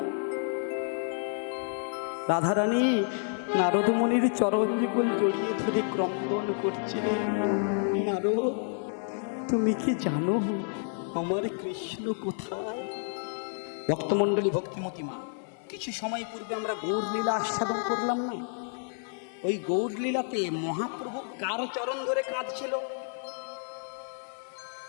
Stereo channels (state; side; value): silent; right; 58 dB below the other